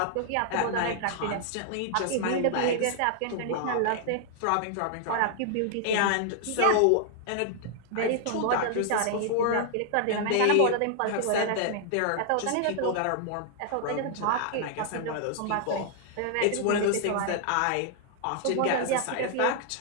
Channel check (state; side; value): different; both; correlation 0.00